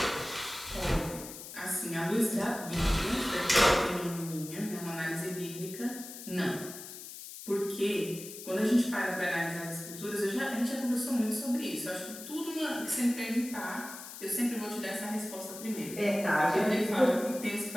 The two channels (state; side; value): noise; left; hiss, 12 dB below the sound